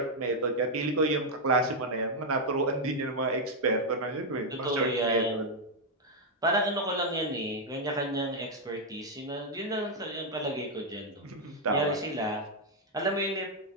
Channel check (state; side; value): normal; both; correlation -0.01